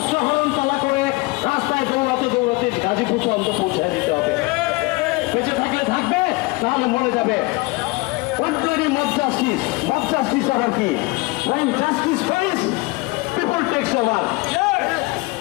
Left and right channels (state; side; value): quieter; right; 24.2 dB